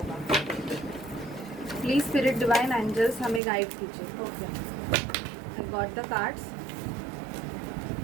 प्लीज़ स्पिरिट डिवाइन एंजल्स हमें गाइड कीजिए। Okay, I got the cards.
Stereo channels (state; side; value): drops out; left; at 3.4 s